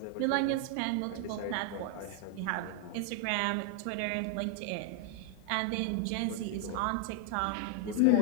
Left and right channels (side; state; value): both; different; correlation 0.00